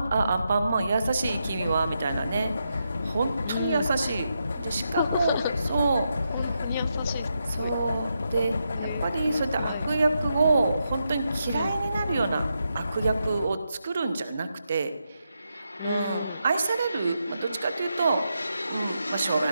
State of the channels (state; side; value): inverted; both; correlation -0.84